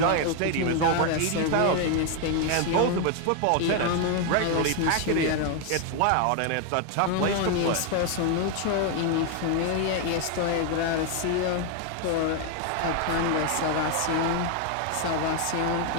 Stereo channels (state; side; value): different; both; correlation 0.01